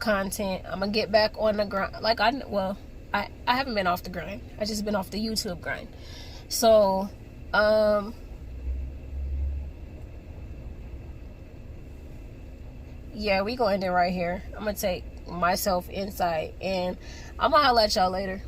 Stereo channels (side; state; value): both; identical; correlation 1.00